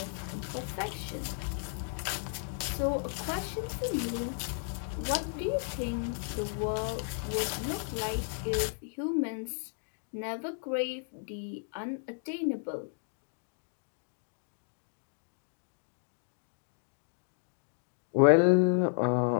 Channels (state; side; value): silent; right; 55 dB below the other